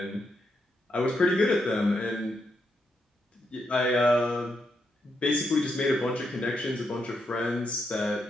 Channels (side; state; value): both; normal; correlation 0.81